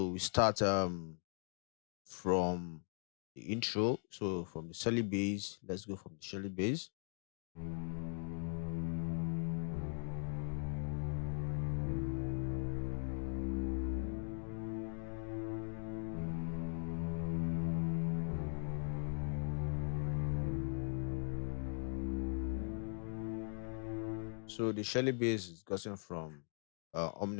we start from the intro. So from the Shelly base, let's go from the Shelly base. So the Shelly base is gotten from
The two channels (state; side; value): silent; right; 51 dB below the other